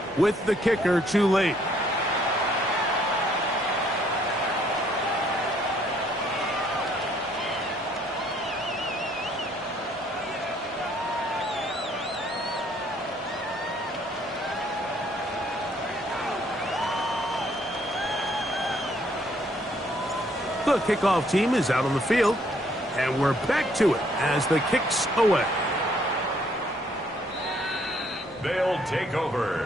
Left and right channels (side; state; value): both; normal; correlation 0.65